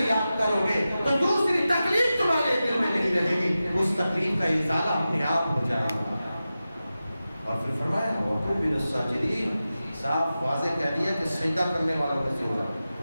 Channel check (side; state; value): both; inverted; correlation -0.93